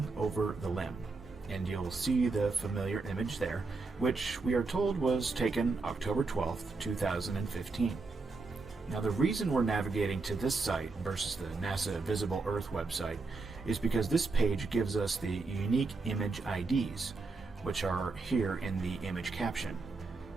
Over the Limb, and you'll see the familiar image there, which we are told was taken October 12th, 2015. Now, the reason we're navigating to this site versus the NASA Visible Earth website is because this page gives us the unique image IDs, which are here in the image caption.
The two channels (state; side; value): quieter; left; 3.9 dB